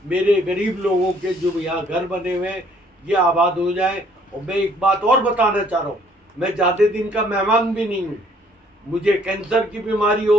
मेरे गरीब लोगों के जो यहाँ घर बने हुए हैं ये आबाद हो जाए। और मैं एक बात और बताना चाह रहा हूँ, मैं ज़्यादा दिन का मेहमान भी नहीं हूँ, मुझे कैंसर की बीमारी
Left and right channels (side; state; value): both; normal; correlation 0.61